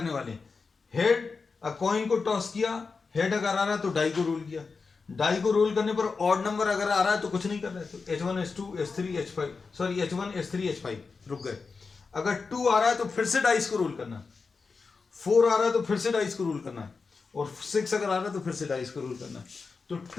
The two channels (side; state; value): right; quieter; 4.7 dB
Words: वाले हैं। हेड, कॉइन को टॉस किया, हेड अगर आ रहा है तो डाई को रोल किया, डाई को रोल करने पर ऑड नंबर अगर आ रहा है तो कुछ नहीं कर रहे, तो H1 H2 H3 H5, sorry H1 H3 H5, रुक गए। अगर 2 आ रहा है तो फिर से डाइस को रोल करना, 4 आ रहा है तो फिर से डाइस को रोल करना है, और 6 अगर आ रहा है तो फिर से डाइस को रोल करना है। तो